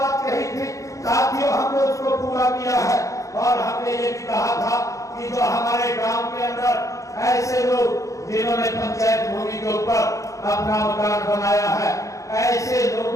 कही थी साथियों, हमने उसको पूरा किया है और हमने ये भी कहा था कि जो हमारे गांव के अंदर ऐसे लोग जिन्होंने पंचायत भूमि के ऊपर अपना मकान बनाया है, ऐसे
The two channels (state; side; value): late; right; 0.15 ms